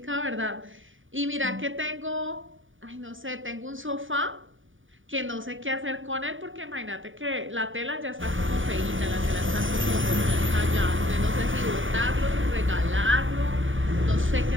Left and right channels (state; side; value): late; left; 0.57 ms